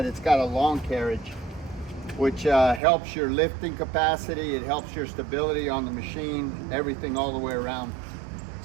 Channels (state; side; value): drops out; left; at 2.8 s